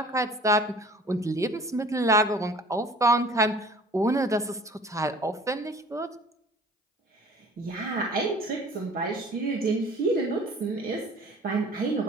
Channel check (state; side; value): normal; both; correlation 0.48